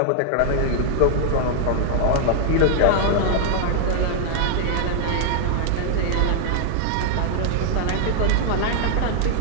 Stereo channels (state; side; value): different; both; correlation -0.01